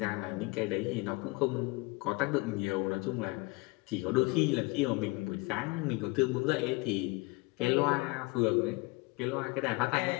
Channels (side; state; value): right; quieter; 24.8 dB